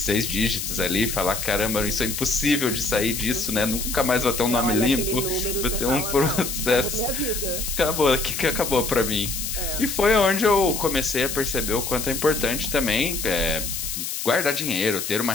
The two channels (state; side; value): noise; left; hiss, 4 dB below the sound